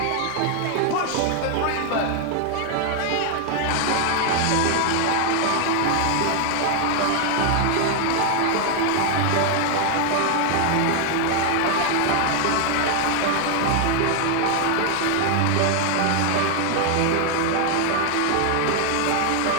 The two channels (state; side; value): different; both; correlation 0.00